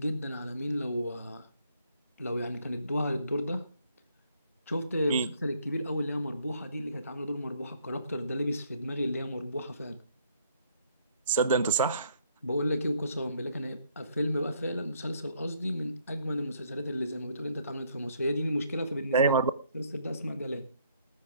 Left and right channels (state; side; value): inverted; both; correlation -0.67